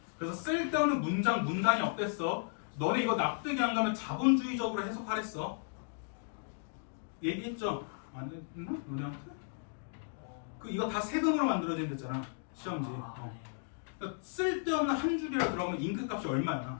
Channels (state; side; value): silent; right; digital silence